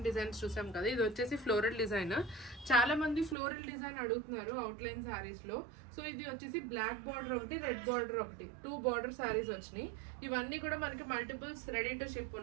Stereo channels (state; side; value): drops out; left; at 3.4 s